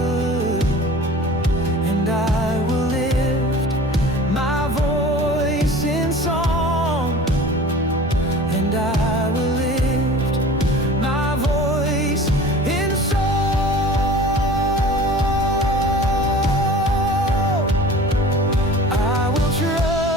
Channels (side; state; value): both; normal; correlation 0.41